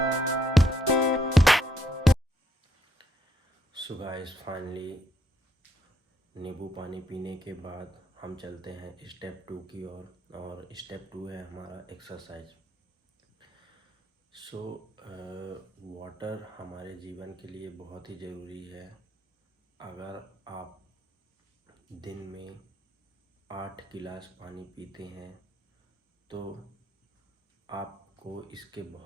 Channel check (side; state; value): both; normal; correlation 0.74